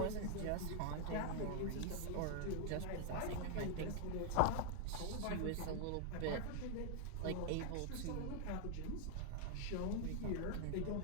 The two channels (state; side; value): different; both; correlation 0.00